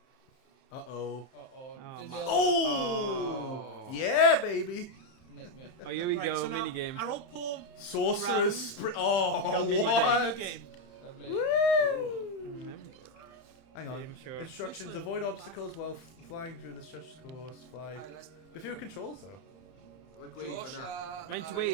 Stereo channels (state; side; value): late; right; 31 ms